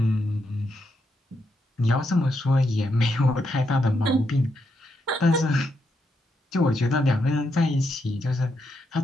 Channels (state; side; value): normal; both; correlation 0.81